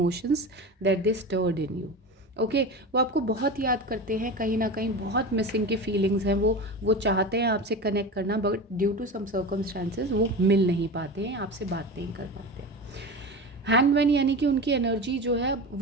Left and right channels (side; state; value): both; normal; correlation 0.28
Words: that they stirred in you. Okay, वो आपको बहुत याद करते हैं, कहीं ना कहीं बहुत मिसिंग की फीलिंग्स हैं। वो चाहते हैं आपसे कनेक्ट करना, but due to some circumstances वो मिल नहीं पाते हैं, आपसे बात नहीं कर पाते हैं। हैंगमैन यानी कि उनकी एनर्जी जो है